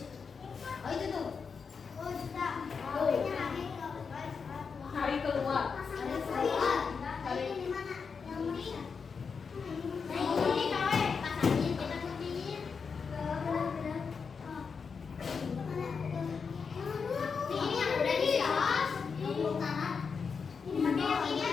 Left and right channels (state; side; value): quieter; right; 5.6 dB